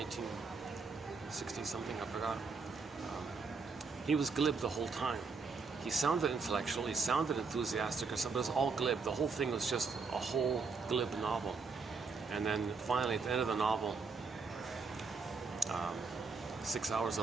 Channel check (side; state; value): left; quieter; 4.6 dB